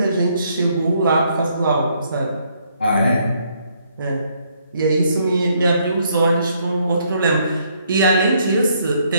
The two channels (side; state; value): both; inverted; correlation -0.70